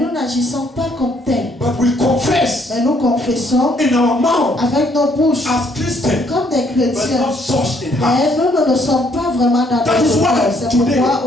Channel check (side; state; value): both; normal; correlation 0.68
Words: n'agissons pas comme tels. But we confess Mais nous confessons in our mouth avec nos bouches as Christians, comme des but chrétiens. not such in heart. Mais nous ne sommes pas vraiment dans That is notre why cœur. C'est today pourquoi